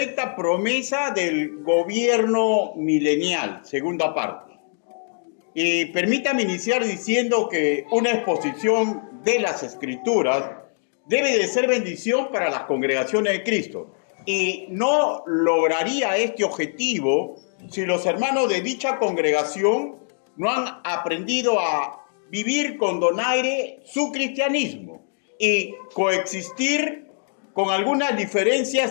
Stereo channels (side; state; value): right; silent; 63 dB below the other